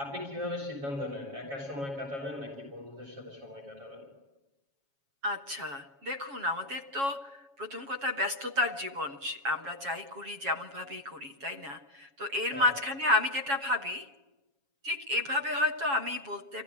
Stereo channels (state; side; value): late; left; 7.2 ms